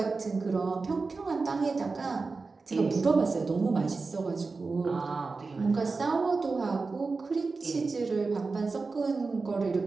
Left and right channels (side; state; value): left; quieter; 4.1 dB